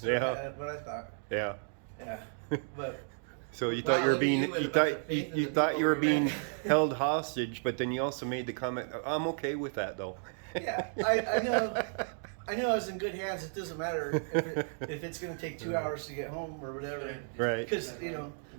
Yeah. what I thought. Yeah. Yeah, but So you Wow, thought you were look at being you with you a bunch thought of faith in you the thought people you were we being met. held hostage, but then you also made the comment, "I'm okay with that, though." Yeah, I know. I know I was in good hands. It doesn't matter if it's going to take 2 hours to get home or whatever. Right. Because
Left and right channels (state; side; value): silent; left; 56 dB below the other